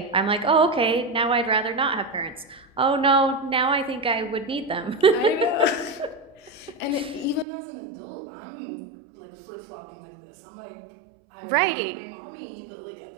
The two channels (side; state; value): left; drops out; at 7.5 s